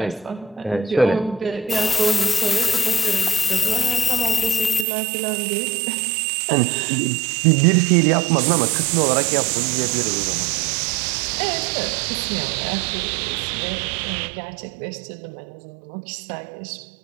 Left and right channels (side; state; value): left; drops out; at 4.9 s